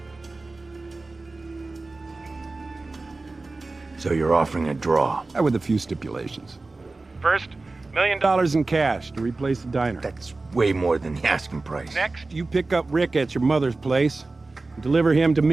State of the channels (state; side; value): quieter; left; 3.4 dB